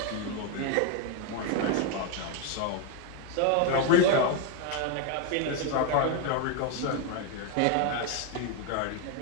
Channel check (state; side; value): different; both; correlation 0.01